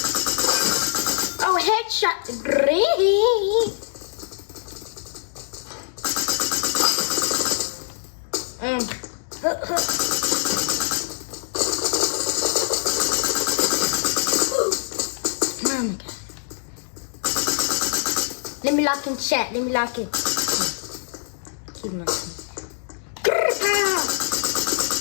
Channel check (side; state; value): right; silent; digital silence